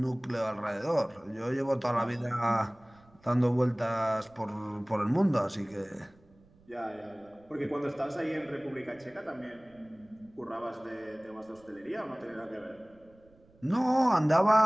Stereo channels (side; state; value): right; noise; rumble, 29 dB below the sound